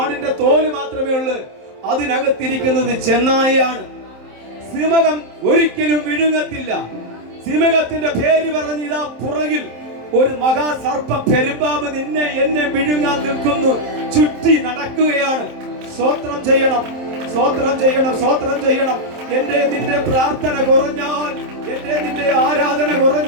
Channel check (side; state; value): left; late; 27 ms